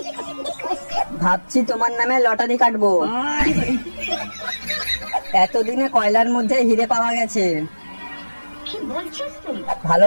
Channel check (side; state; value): both; inverted; correlation -1.00